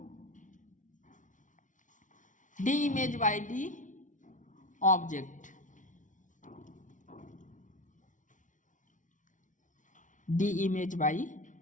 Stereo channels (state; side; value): late; right; 0.37 ms